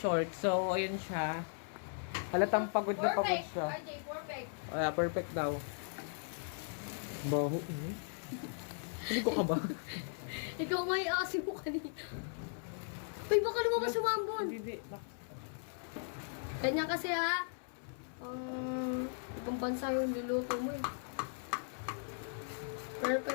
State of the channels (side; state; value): right; silent; 53 dB below the other